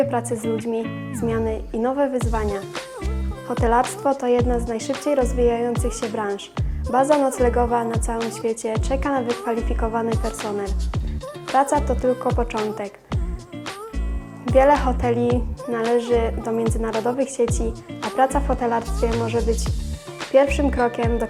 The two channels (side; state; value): both; identical; correlation 1.00